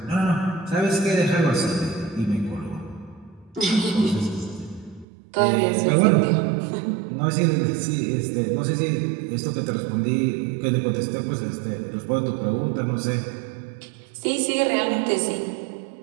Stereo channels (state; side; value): drops out; left; at 5.1 s